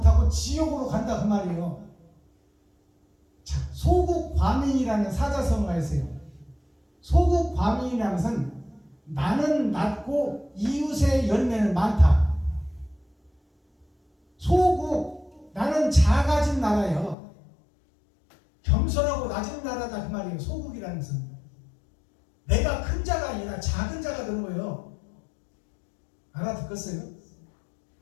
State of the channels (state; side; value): drops out; right; at 17.2 s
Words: 지옥으로 간다 그 말이에요. 자, 소국과민이라는 사자성어가 있어요. 소국과민이라는 것은 나는 낮고 이웃의 열매는 많다. 소국, 나는 작아진 나라예요. 겸손하고 낮은 나라다 그 말이에요. 소국이라는 것은 내가 큰 자가 아니라 작은 자가 되는 거예요. 알아듣겠어요?